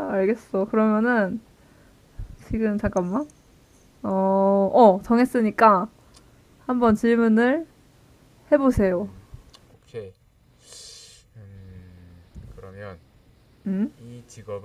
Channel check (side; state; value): both; identical; correlation 1.00